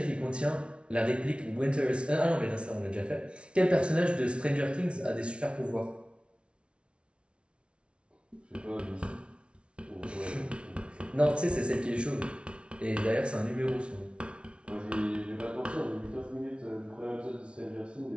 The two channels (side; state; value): left; late; 0.059 ms